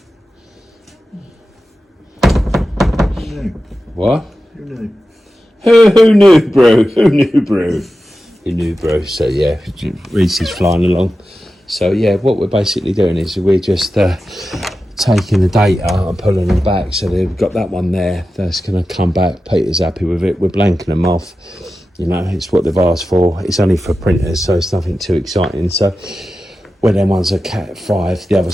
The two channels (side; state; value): both; normal; correlation 0.93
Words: What? Who knew? Who knew, bro? Who knew, bro? Who knew, bro? So yeah, Reese is flying along. So yeah, what we're basically doing is we're just taking the data and pulling them back. So they've got that one there. That's going to come back. Peter's happy with it. We're blanking them off. You know, it's what they've asked for. It's only for printers, so it's nothing too exciting. So when them ones are Cat 5, the other